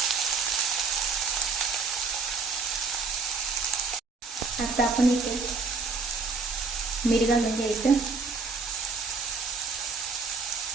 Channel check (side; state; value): left; quieter; 4.3 dB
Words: आता आपण इथे मीठ घालून घ्यायचं,